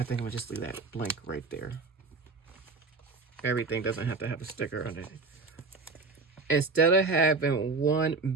think I'm gonna just leave that blank right there. Everything doesn't have to have a sticker on it. Instead of having one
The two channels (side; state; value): left; quieter; 4.1 dB